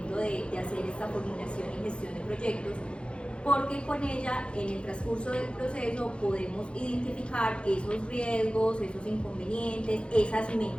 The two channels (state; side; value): late; right; 0.057 ms